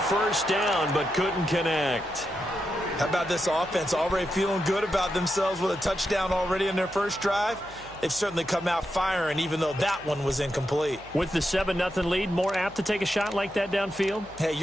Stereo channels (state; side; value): noise; left; hum, 22 dB below the sound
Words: first down, but couldn't connect. How about this offense already feeling good about themselves with a touchdown already in their first drive? They've certainly come out firing, even though that one was incomplete. With the 7-0 lead, more apt to take a shot like that downfield? Hey,